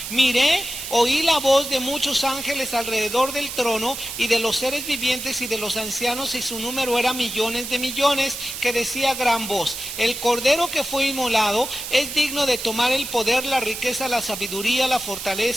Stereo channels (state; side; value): noise; right; hiss, 7 dB below the sound